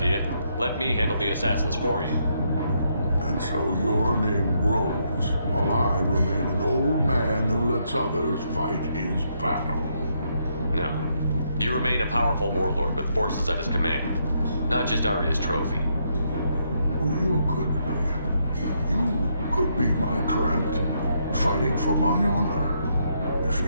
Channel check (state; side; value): inverted; both; correlation -0.76